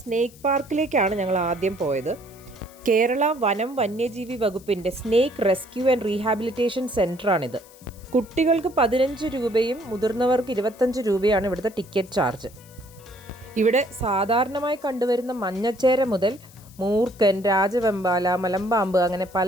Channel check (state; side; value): noise; left; hiss, 24 dB below the sound